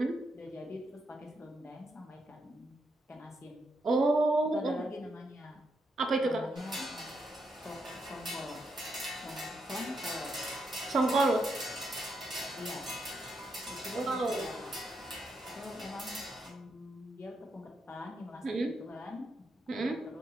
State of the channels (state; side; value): normal; both; correlation 0.81